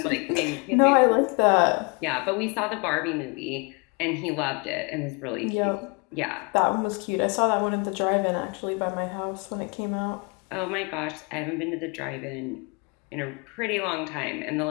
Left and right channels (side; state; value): right; quieter; 31.9 dB